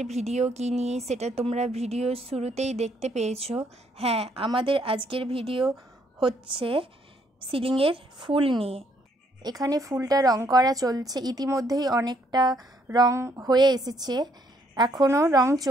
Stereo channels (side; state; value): both; normal; correlation 0.69